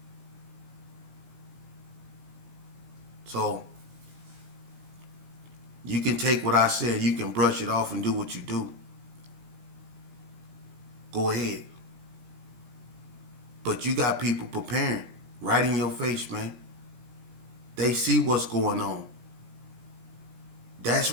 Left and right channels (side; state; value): left; late; 16 ms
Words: So, you can take what I said, you can brush it off and do what you do. Go ahead. But you got people preparing right in your face, man. They see what's going on. That's